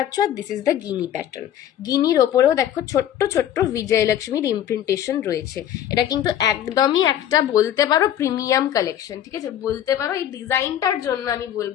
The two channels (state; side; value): quieter; right; 10.9 dB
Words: আর this is the guinea pattern. গিনির ওপরেও দেখো ছোট্ট ছোট্ট বিজয়লক্ষ্মীর ইমপ্রিন্টেশন রয়েছে। এটা কিন্তু একদমই একটা বলতে পারো প্রিমিয়াম কালেকশন, ঠিক আছে, বলতে পারো এই ডিজাইনটার জন্য আমি